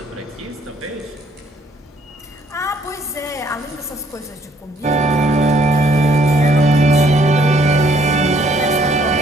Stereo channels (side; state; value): both; normal; correlation 0.65